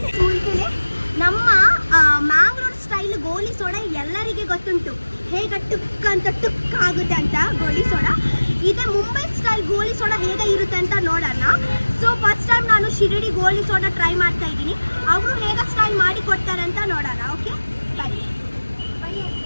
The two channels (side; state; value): both; inverted; correlation -1.00